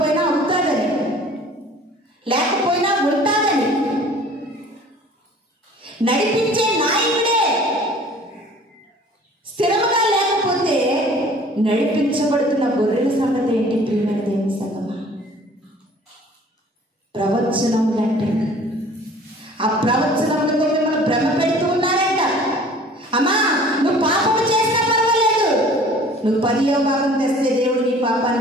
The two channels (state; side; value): normal; both; correlation 0.49